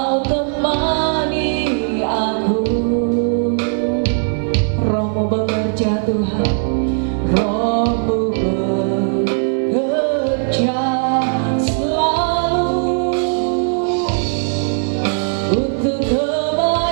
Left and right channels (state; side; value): silent; left; 55 dB below the other